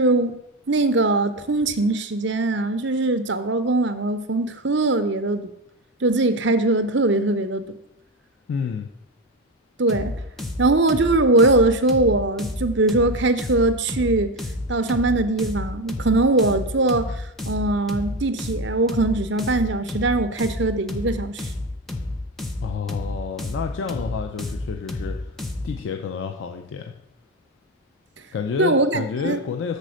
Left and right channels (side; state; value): both; normal; correlation 0.17